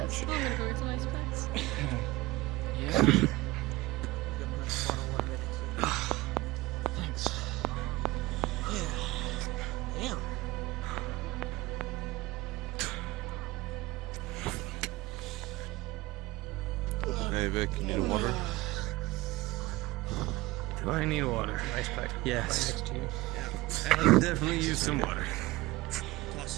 yes. I'm gonna go with some ice packs. Thanks. Damn. Hey Vic, you need water? Do I need water? Ice pack. Yes. Right next to you. I'll definitely use some water.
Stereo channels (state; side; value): quieter; left; 19.7 dB